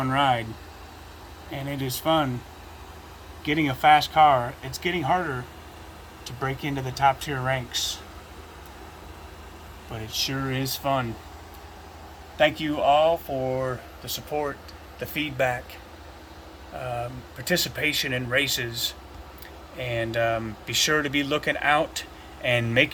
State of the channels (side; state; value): both; identical; correlation 1.00